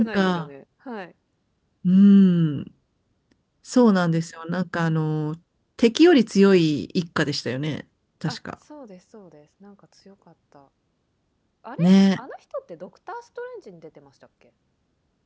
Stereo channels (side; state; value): both; identical; correlation 1.00